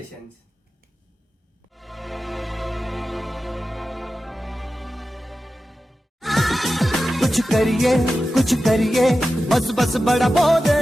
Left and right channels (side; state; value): both; normal; correlation 0.93